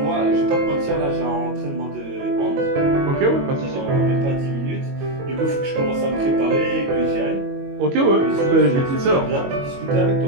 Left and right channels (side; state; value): left; late; 22 ms